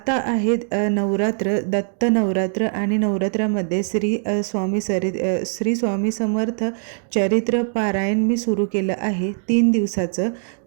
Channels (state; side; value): silent; left; digital silence